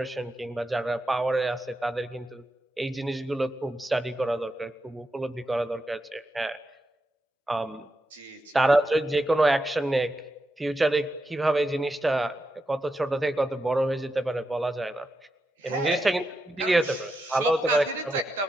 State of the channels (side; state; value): both; normal; correlation 0.87